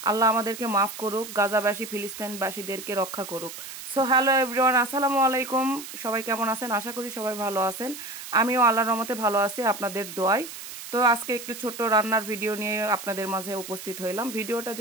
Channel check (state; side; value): noise; right; hiss, 11 dB below the sound